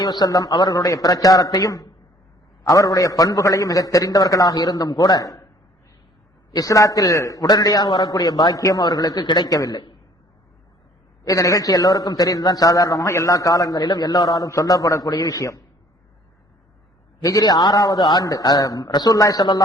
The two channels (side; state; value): both; normal; correlation 0.57